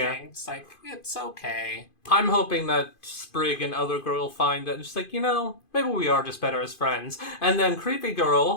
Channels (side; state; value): right; late; 2.5 ms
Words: It's like, it's okay. I'm hoping that Sprig and other girl will find that, just like, maybe we are just better as friends. And then Creepy